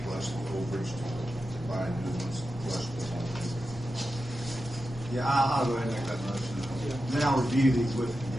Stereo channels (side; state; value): both; normal; correlation 0.91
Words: plus the overage to buy new ones, plus the one. Yeah, I'll go ahead and make that motion. Then I'll review these with the